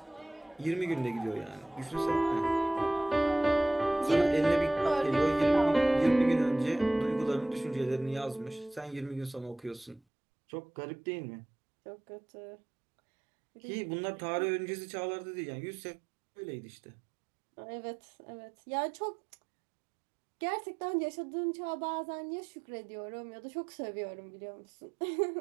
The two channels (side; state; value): left; drops out; at 10.0 s